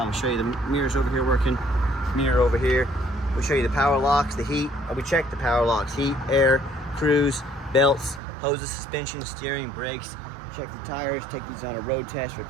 show you the mirrors over here working. Mirror over here. We'll show you the power locks, the heat. We check the power locks, heat, air, cruise, belts, hoses, suspension, steering, brakes. Check the tires, take these on a road test,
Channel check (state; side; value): drops out; left; at 8.2 s